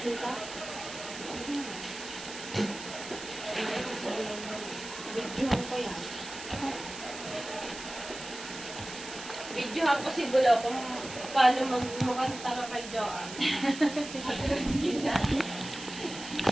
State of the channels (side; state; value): right; noise; hiss, 11 dB below the sound